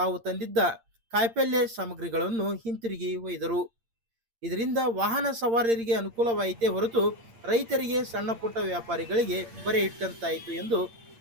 ತಂದಿದ್ದ ಕಾಯಿಪಲ್ಯ ಸಾಮಗ್ರಿಗಳನ್ನು ಹಿಂತಿರುಗಿ ಒಯ್ದರು. ಇದರಿಂದ ವಾಹನ ಸವಾರರಿಗೆ ಅನುಕೂಲವಾಯಿತೇ ಹೊರತು ರೈತರಿಗೆ, ಸಣ್ಣ ಪುಟ್ಟ ವ್ಯಾಪಾರಿಗಳಿಗೆ ಬರೆ ಇಟ್ಟಂತಾಯಿತು ಎಂದು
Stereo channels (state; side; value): late; left; 8.7 ms